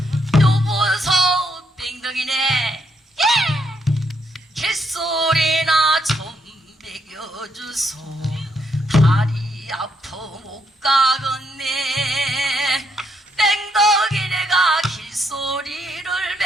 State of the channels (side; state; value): both; normal; correlation 0.75